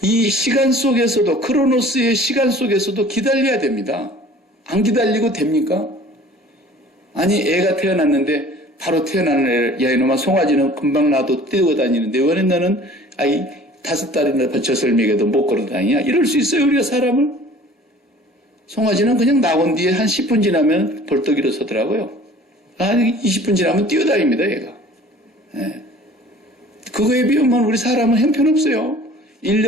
이 시간 속에서도, 크로노스의 시간 속에서도 기다려야 됩니다. 안 기다리고 됩니까? 아니, 애가 태어났는데 바로 태어나는 애를, 야 이놈아 송아지는 금방 놔도 뛰어다니는데 왜 너는 아이 5달이나 젖을 먹여도 못 걸어다니냐? 이럴 수 있어요, 우리가 사람을? 송아지는 그냥 나온 뒤에 한 10분 지나면 벌떡 일어서더라고요. 한 20분 지나면 뛰어다닙니다, 얘가. 네. 그거에 비하면 우리 사람은 형편없어요.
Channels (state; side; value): normal; both; correlation 0.48